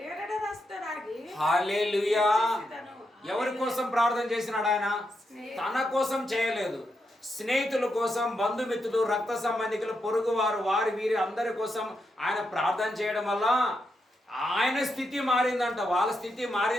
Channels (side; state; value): both; normal; correlation 0.83